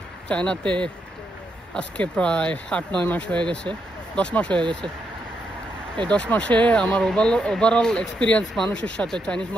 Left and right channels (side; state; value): both; normal; correlation 0.80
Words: চায়নাতে আজকে প্রায় 8-9 মাস হয়ে গেছে, 10 মাস হয়ে গেছে। এই 10 মাসে আমার ওভারঅল এক্সপিরিয়েন্স মানুষের সাথে, চাইনিজ